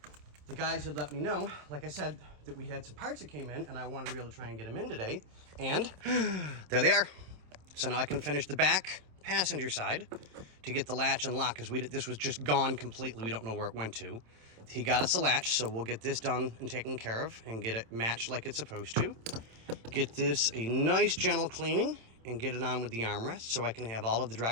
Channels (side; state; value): left; late; 27 ms